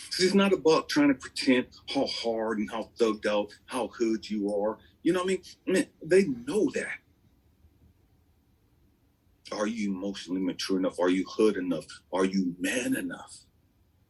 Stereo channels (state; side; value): identical; both; correlation 1.00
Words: It's not about trying to pretend how hard and how thugged out, how hood you are. You know what I mean? Man, they know that. Are you emotionally mature enough? Are you hood enough? Are you man enough